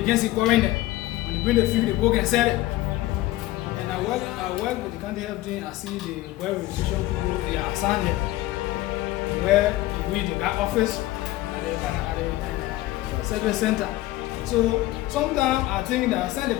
can see quarantine. When you bring the food, the book and sell it. And I work with the county health team. I see the well registration people, they are assigned there. Where you read the office at the service center. So sometimes I think that Sunday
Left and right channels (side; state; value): right; quieter; 16.8 dB